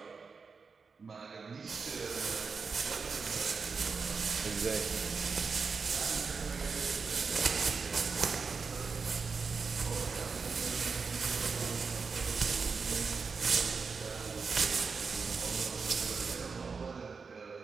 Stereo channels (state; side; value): quieter; left; 5.1 dB